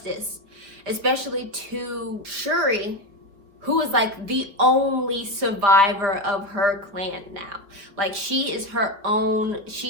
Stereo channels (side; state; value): left; late; 5.0 ms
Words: especially to Shuri, who is like the only survivor of her clan now. Like, she is her own,